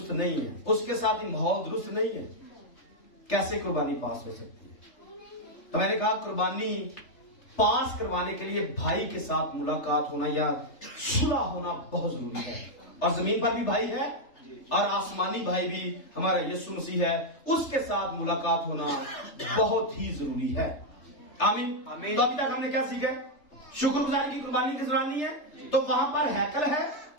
नहीं है, उसके साथ ही माहौल दुरुस्त नहीं है, कैसे कुर्बानी पास हो सकती है? तो मैंने कहा कुर्बानी पास करवाने के लिए भाई के साथ मुलाकात होना या सुलह होना बहुत जरूरी है। और जमीन पर भी भाई है और आसमानी भाई भी हमारा यीशु मसीह है, उसके साथ मुलाकात होना बहुत ही जरूरी है। आमीन। तो अभी तक हमने क्या सीखा? शुक्रगुजारी की कुर्बानी किस रानी है? तो वहां पर हैकल है,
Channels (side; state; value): right; late; 3.3 ms